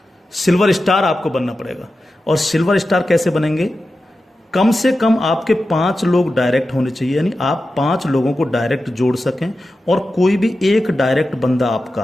सिल्वर स्टार आपको बनना पड़ेगा। और सिल्वर स्टार कैसे बनेंगे? कम से कम आपके 5 लोग डायरेक्ट होने चाहिए, यानी आप 5 लोगों को डायरेक्ट जोड़ सकें, और कोई भी एक डायरेक्ट बंदा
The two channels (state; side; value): normal; both; correlation 0.92